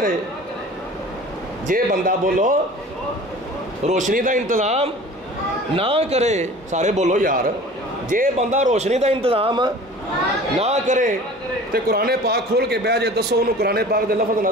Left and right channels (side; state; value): both; normal; correlation 0.43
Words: جے بندہ بولو روشنی دا انتظام نہ کرے، سارے بولو یار، جے بندہ روشنی دا انتظام نہ کرے تے قرآن پاک کھول کے بہ جے، دسو انہوں قرآن پاک دے لفظ